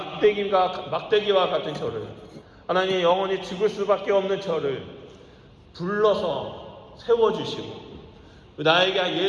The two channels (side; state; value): both; identical; correlation 1.00